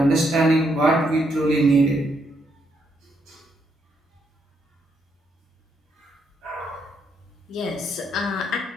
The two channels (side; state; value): both; normal; correlation 0.76